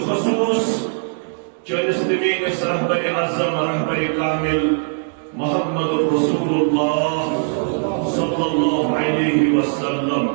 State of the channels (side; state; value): left; silent; digital silence